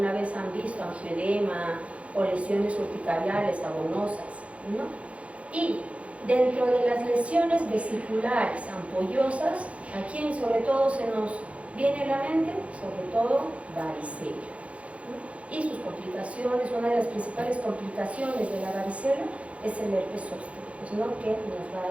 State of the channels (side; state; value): left; late; 0.063 ms